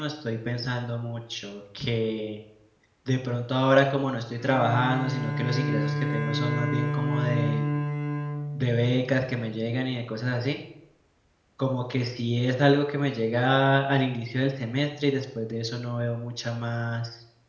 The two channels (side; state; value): both; identical; correlation 1.00